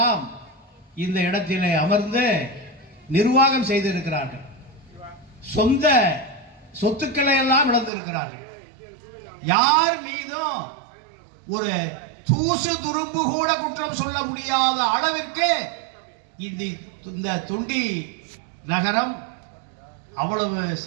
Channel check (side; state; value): left; drops out; at 7.9 s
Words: இந்த இடத்திலே அமர்ந்து நிர்வாகம் செய்திருக்கிறார்கள். சொந்த சொத்துக்களை எல்லாம் இழந்திருக்கிறார்கள். யார் மீதும் ஒரு தூசு துரும்பு கூட குற்றம் சொல்ல முடியாத அளவிற்கு இந்த தொண்டி நகரம் அவ்வளவு